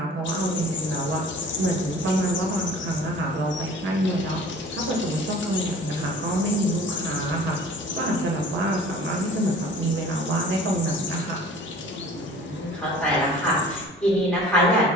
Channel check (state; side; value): normal; both; correlation 0.46